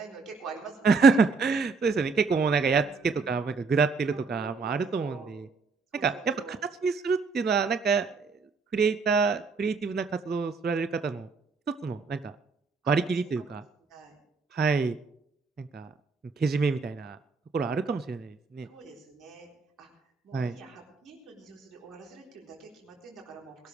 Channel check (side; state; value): left; quieter; 4.6 dB